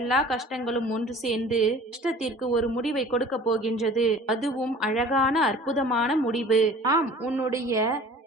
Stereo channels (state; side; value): normal; both; correlation 0.46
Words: எல்லா கஷ்டங்களும் ஒன்று சேர்ந்து கஷ்டத்திற்கு ஒரு முடிவை கொடுக்க போகின்றது. அதுவும் அழகான அற்புதமான முடிவு. ஆம், உன்னுடைய